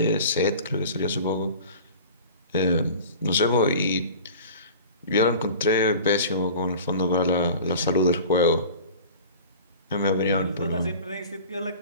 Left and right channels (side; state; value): both; inverted; correlation -0.39